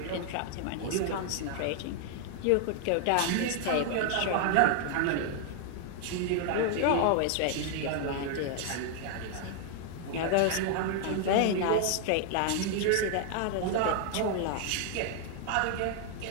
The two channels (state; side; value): different; both; correlation 0.00